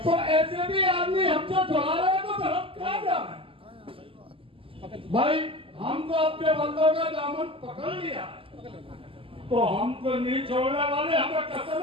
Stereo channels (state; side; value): late; left; 0.26 ms